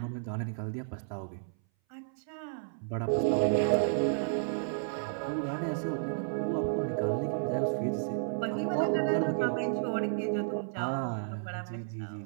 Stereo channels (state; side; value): silent; left; 56 dB below the other